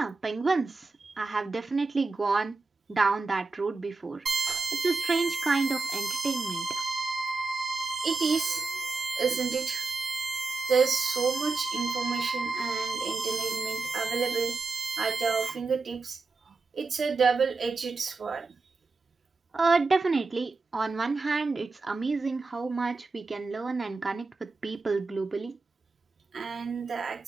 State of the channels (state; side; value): quieter; left; 3.9 dB